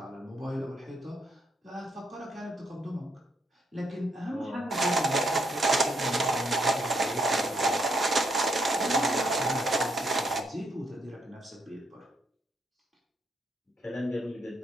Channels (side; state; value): both; normal; correlation 0.74